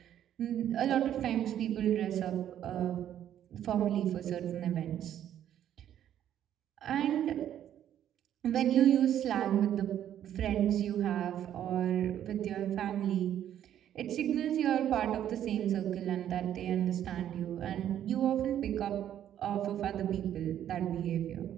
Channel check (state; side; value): quieter; left; 10.7 dB